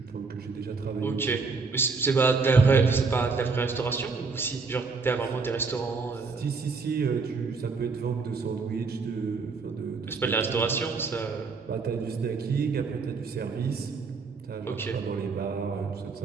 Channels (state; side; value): quieter; left; 4.6 dB